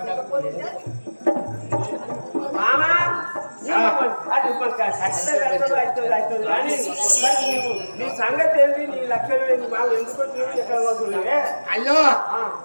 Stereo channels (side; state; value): both; inverted; correlation -1.00